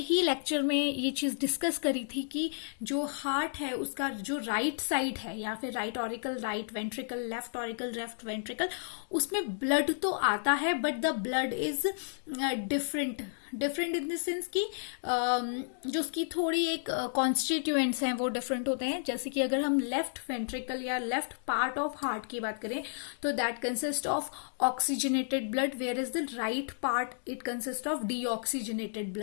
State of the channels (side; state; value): right; silent; digital silence